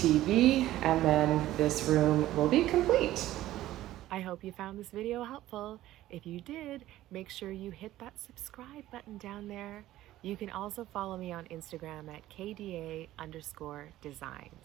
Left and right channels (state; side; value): quieter; left; 14.8 dB